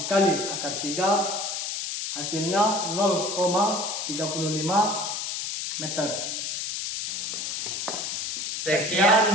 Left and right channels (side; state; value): left; noise; hiss, 3 dB below the sound